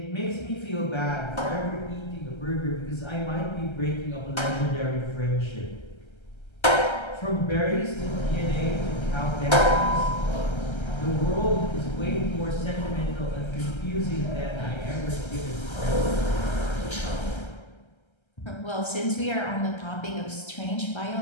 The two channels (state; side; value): late; right; 1.3 ms